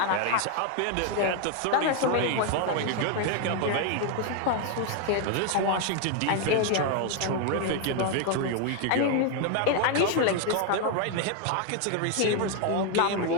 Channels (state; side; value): different; both; correlation 0.00